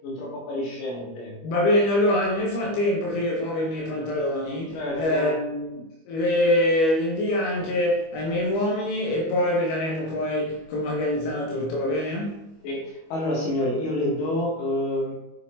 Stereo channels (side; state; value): right; late; 25 ms